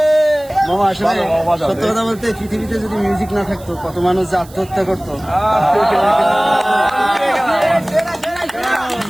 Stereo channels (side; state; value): right; noise; hiss, 22 dB below the sound